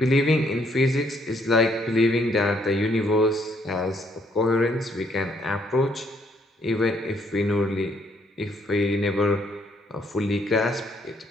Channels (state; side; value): normal; both; correlation 0.69